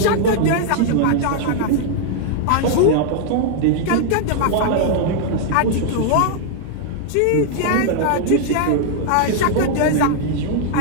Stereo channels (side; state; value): both; different; correlation -0.01